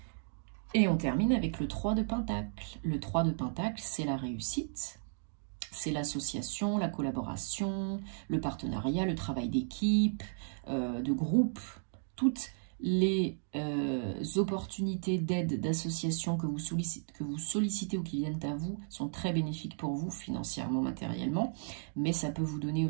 Et on termine avec le 3 de Pentacle. Le 3 de Pentacle, c'est la réussite, c'est l'association, la collaboration, le partenariat, le travail d'équipe, de groupe, toutes Les opportunités d'aide, d'association que vous sollicitez ou qui viennent à vous sont très bénéfiques pour vous, financièrement, matériellement, mais ça peut vous donner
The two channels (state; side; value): silent; left; digital silence